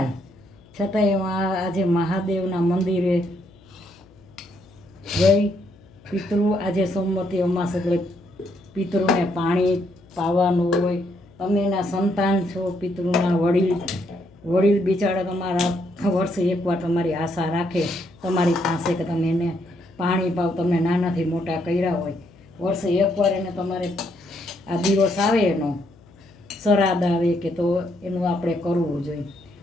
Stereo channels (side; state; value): left; noise; hum, 26 dB below the sound